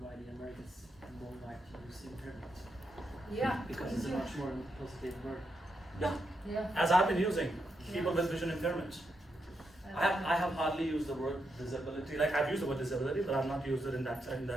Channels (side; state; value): both; normal; correlation 0.83